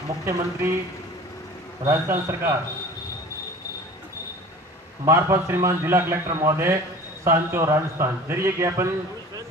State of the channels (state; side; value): normal; both; correlation 0.42